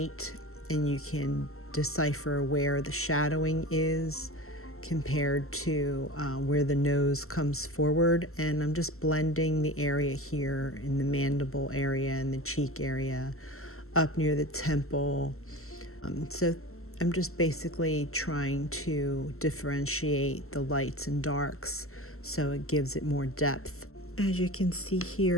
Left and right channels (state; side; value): late; right; 0.63 ms